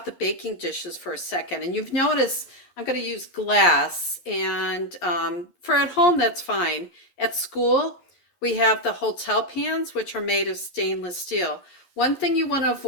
the baking dishes for a second. And you've noticed I'm gonna use glass, and for at home, that's fine. At school, we have the hotel pans, which are made of stainless steel. One thing you wanna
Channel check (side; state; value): right; late; 11 ms